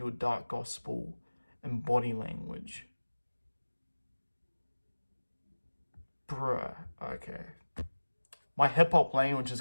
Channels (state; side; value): inverted; both; correlation -1.00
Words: dark gospel in body language? Bruh. Okay. My hip-hop language is